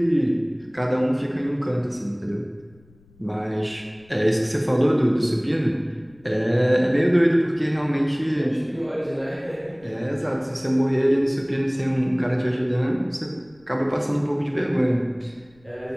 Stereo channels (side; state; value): left; noise; rumble, 30 dB below the sound